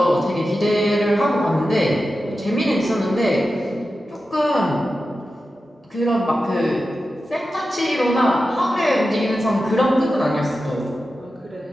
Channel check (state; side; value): normal; both; correlation 0.92